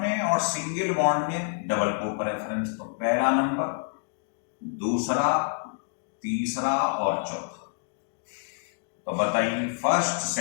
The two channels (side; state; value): right; silent; digital silence